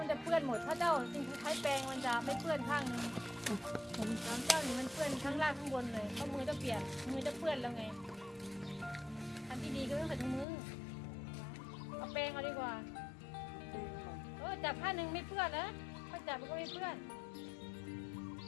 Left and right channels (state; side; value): drops out; right; at 10.5 s